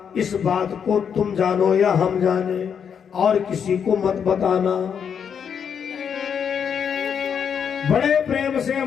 इस बात को तुम जानो या हम जाने, और किसी को मत बताना। बड़े प्रेम से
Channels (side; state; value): right; quieter; 7.4 dB